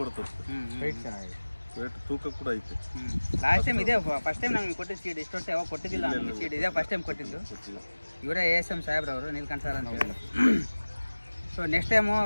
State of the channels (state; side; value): inverted; both; correlation -1.00